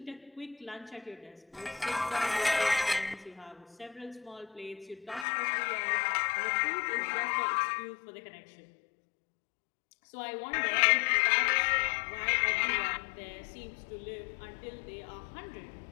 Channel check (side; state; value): right; drops out; at 5.2 s